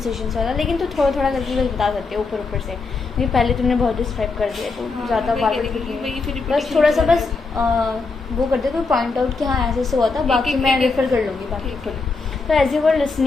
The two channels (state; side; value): quieter; right; 4.1 dB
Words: वाला, लेकिन तो थोड़ा थोड़ा करके बस बता सकते हो ऊपर से, क्योंकि पहले तुमने बहुत डिस्क्राइब कर दिया, तो ज़्यादा बस थोड़ा सा बस वो कर दे, कोई पॉइंट आउट कि हाँ ऐसे हुआ था, बाकी मैं रेफर कर लूँगी बाकी खुद। So as you were